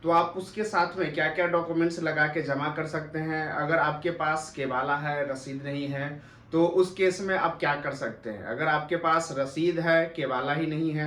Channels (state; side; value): identical; both; correlation 1.00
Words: तो आप उसके साथ में क्या क्या डॉक्यूमेंट्स लगा के जमा कर सकते हैं। अगर आपके पास केवाला है, रसीद नहीं है, तो उस केस में आप क्या कर सकते हैं। अगर आपके पास रसीद है, केवाला ही नहीं